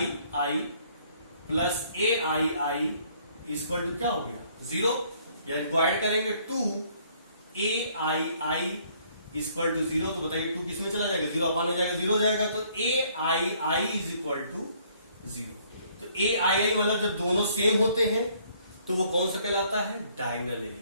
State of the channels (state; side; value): inverted; both; correlation -0.63